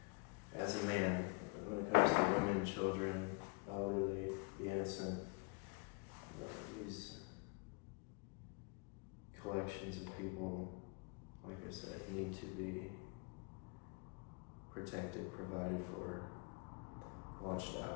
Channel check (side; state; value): right; quieter; 31.1 dB